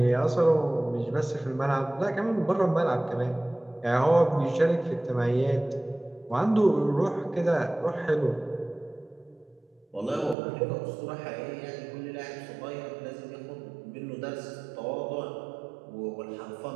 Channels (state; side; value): drops out; left; at 10.4 s